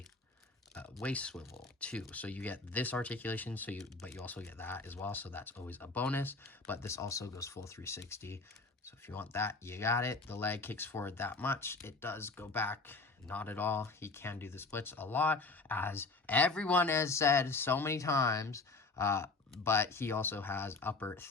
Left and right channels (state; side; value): quieter; right; 3.7 dB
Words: waist swivel too, so you get this articulation, but you also get that as well, so that's always a bonus. But this also goes full 360, so if you want that, you got it. The leg kicks forward that much. It does go back not at all. He can do the splits a lot, as everyone has said so many times, but he also has upper